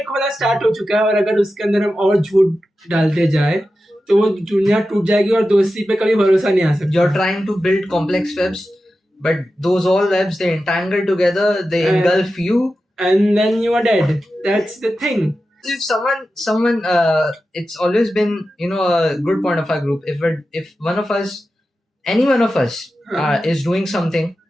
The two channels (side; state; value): both; normal; correlation 0.92